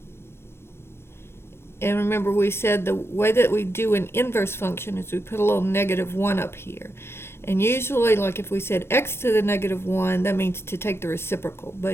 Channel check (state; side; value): late; right; 0.12 ms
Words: And remember, we said the way that we do an inverse function is we put a little -1 up here. And usually, like if we said x to the -1, that means to take the reciprocal.